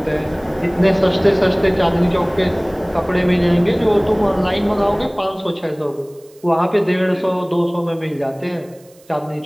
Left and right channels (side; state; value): right; noise; hiss, 29 dB below the sound